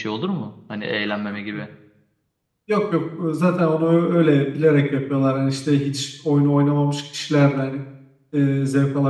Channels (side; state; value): both; identical; correlation 1.00